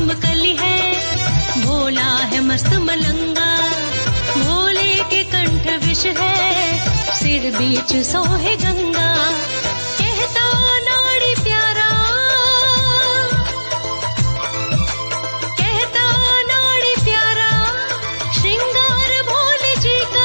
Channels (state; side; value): inverted; both; correlation -1.00